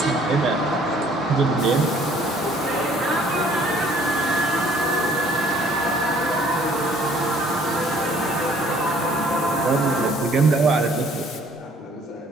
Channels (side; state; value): both; normal; correlation 0.58